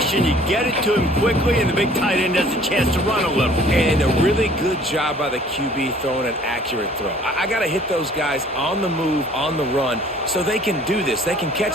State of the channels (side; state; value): both; normal; correlation 0.54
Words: You get it to him quickly, and the big tight end has a chance to run a little. And a really good job by the QB throwing an accurate throw. I got to hit those guys on the move, on the run, so they can do this. They can